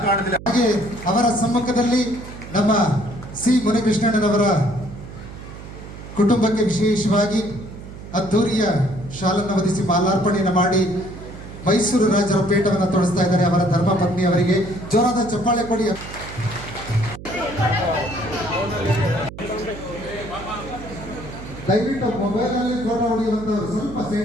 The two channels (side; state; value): right; noise; hum, 13 dB below the sound